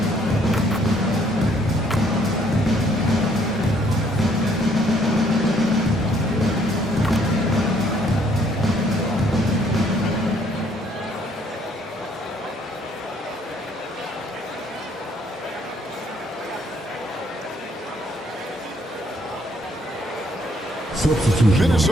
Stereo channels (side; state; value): both; normal; correlation 0.66